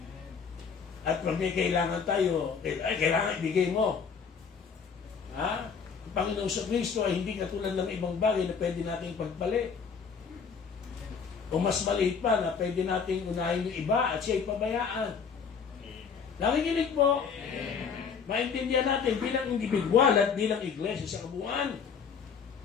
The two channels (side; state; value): right; quieter; 6.1 dB